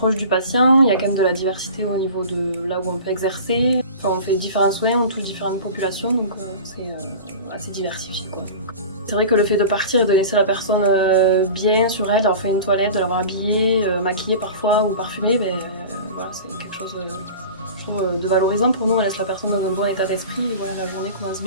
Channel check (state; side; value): inverted; both; correlation -0.36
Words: du patient, il y a quand même de la diversité au niveau de là où on peut exercer. Enfin, on fait différents soins, on touche différentes populations donc c'est assez diversifié quoi. C'est vrai que le fait de partir et de laisser la personne bien sur elle, d'avoir fait une toilette, de l'avoir habillée, maquillée parfois ou parfumée, voilà, c'est quelque chose de valorisant pour nous, on laisse la personne dans un bon état d'esprit et voilà, la journée commence